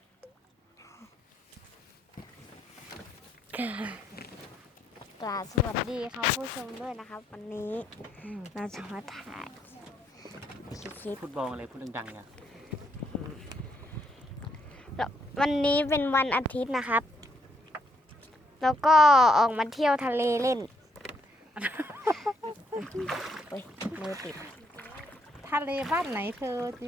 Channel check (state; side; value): normal; both; correlation 0.73